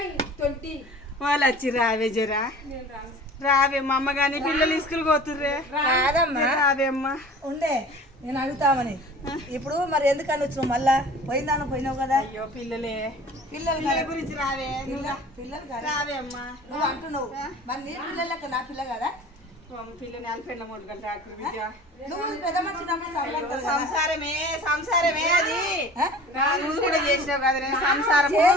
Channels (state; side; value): normal; both; correlation 0.43